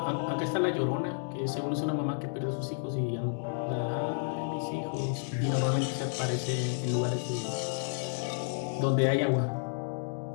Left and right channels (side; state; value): right; silent; digital silence